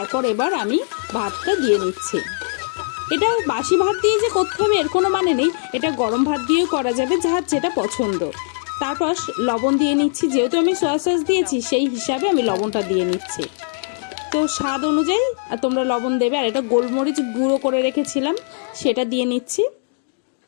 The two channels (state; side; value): silent; right; digital silence